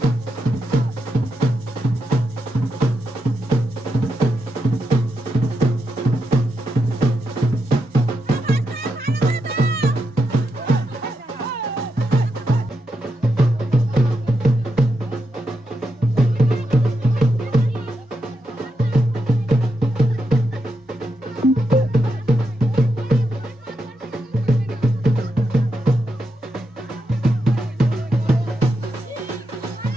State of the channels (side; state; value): both; normal; correlation 0.84